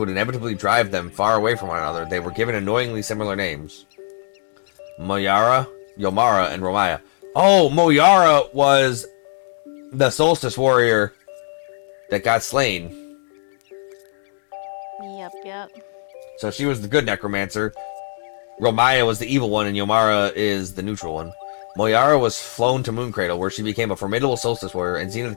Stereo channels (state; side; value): silent; right; digital silence